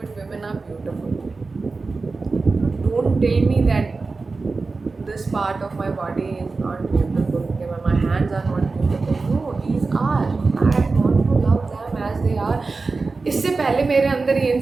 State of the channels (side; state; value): left; quieter; 4.0 dB